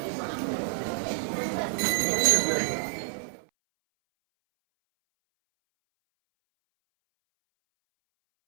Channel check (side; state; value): left; silent; 59 dB below the other